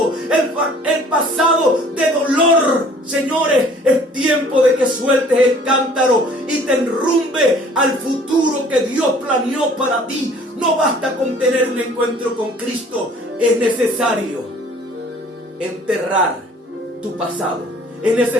el pasado de dolor. Señores, es tiempo de que sueltes el cántaro y te enrumbe al futuro que Dios planeó para ti. No basta con tener un encuentro con Cristo. Es necesario enterrar tu pasado. Es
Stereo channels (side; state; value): both; normal; correlation 0.53